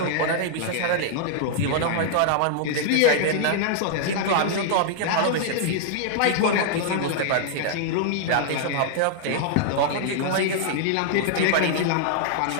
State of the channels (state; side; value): different; both; correlation 0.00